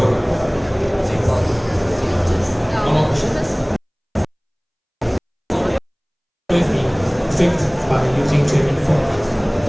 By using trading form?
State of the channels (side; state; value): both; identical; correlation 1.00